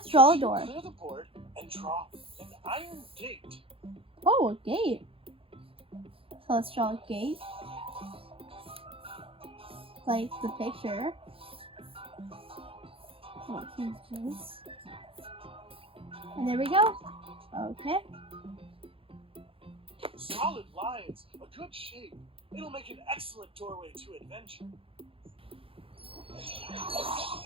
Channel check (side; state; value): left; late; 0.27 ms